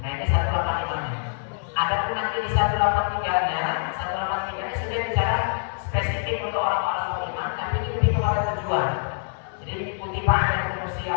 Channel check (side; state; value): right; silent; 62 dB below the other